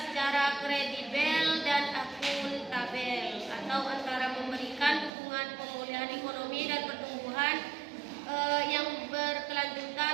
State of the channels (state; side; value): drops out; left; at 5.1 s